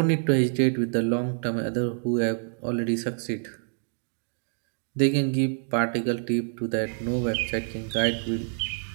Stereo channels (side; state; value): left; silent; digital silence